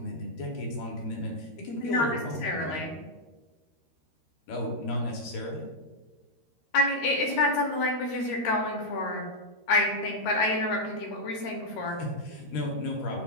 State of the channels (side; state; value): right; late; 13 ms